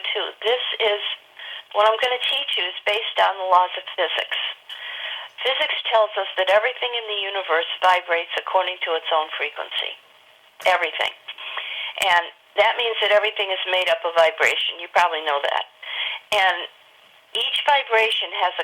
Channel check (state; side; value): identical; both; correlation 1.00